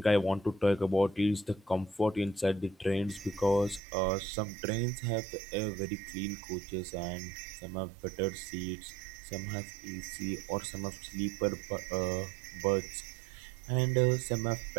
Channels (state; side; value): drops out; left; at 3.8 s